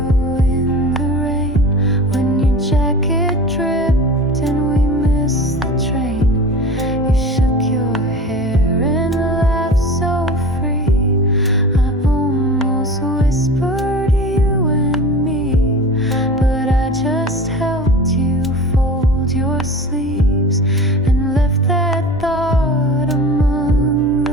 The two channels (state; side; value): normal; both; correlation 0.35